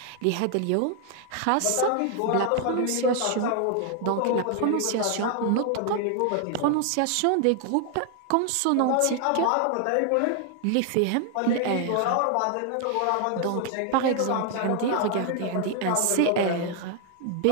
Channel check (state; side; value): different; both; correlation 0.00